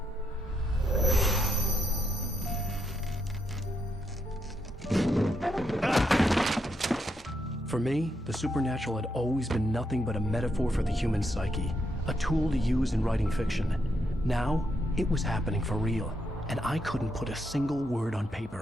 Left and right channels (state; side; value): normal; both; correlation 0.80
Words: For me, the supernatural had always been nothing but a metaphor for the human psyche, a tool to use in writing fiction. Now, it was happening for real, and I couldn't put a single word on